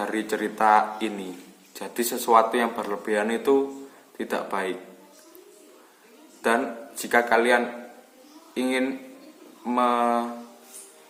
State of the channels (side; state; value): both; identical; correlation 1.00